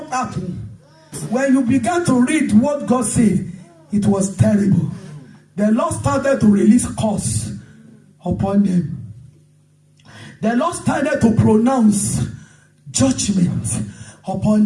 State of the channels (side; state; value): both; identical; correlation 1.00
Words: happened? When you began to read what God said, it was terrible. The Lord started to release curse upon them. The Lord started to pronounce judgment